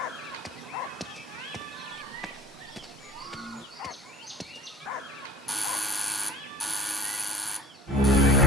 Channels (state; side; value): normal; both; correlation 0.48